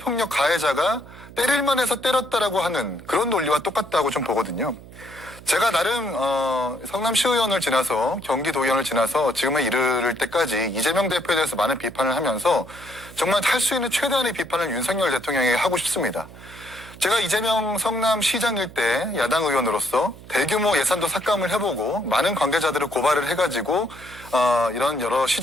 가해자가 때릴만 해서 때렸다라고 하는 그런 논리와 똑같다고 좀 보거든요. 제가 나름 성남시의원을 지나서 경기도의원을 지나서 지금에 이르를 때까지 이재명 대표에 대해서 많은 비판을 하면서 정말 할 수 있는 최대한의 비판을 윤석열 대통령에게 하고 싶습니다. 제가 이재명 성남시장일 때 야당 의원으로서 대규모 예산도 삭감을 해보고 많은 관계자들을 고발을 해가지고 이런 여러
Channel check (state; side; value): noise; right; hum, 18 dB below the sound